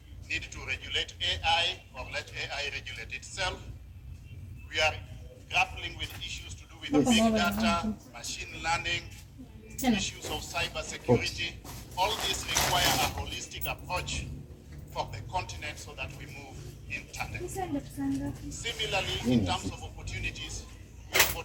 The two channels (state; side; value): identical; both; correlation 1.00